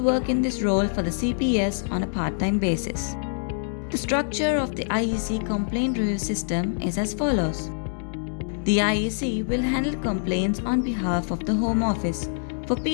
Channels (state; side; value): silent; right; digital silence